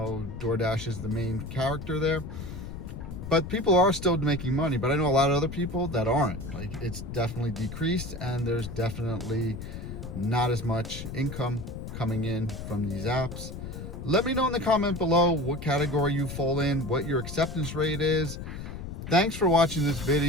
is the main character there. But people are still making money, but I know a lot of other people that aren't. Like, it's definitely decreased, and there's definitely not as much income coming in from these apps. Let me know in the comment below what category you fall in, what your acceptance rate is. Thanks for watching this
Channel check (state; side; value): noise; left; rumble, 8 dB below the sound